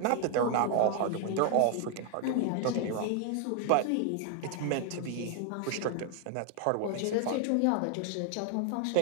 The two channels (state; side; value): different; both; correlation 0.00